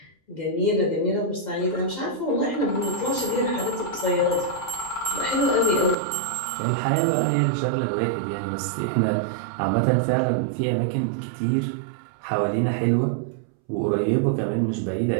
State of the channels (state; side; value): drops out; left; at 6.0 s